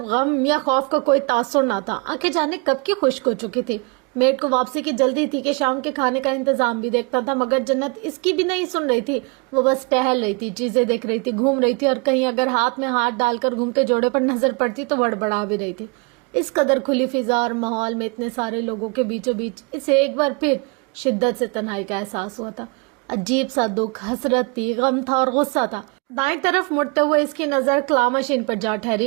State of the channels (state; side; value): quieter; left; 30.7 dB